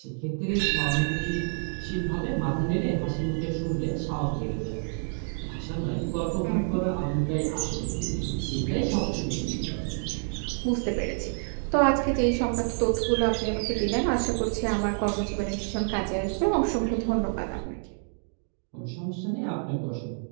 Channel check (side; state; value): left; silent; 59 dB below the other